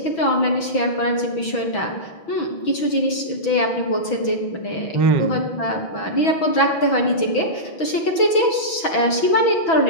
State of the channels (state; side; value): late; right; 6.1 ms